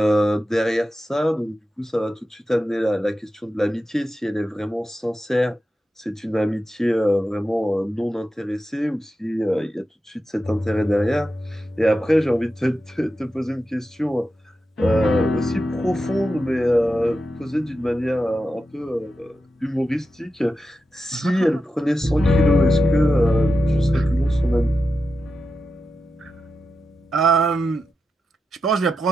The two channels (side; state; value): both; normal; correlation 0.90